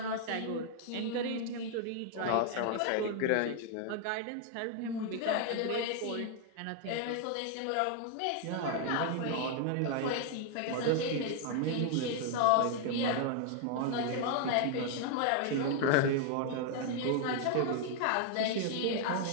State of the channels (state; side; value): different; both; correlation 0.00